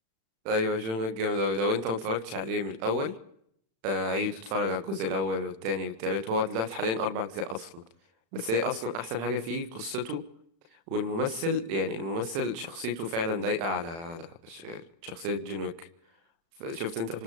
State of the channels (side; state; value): left; late; 36 ms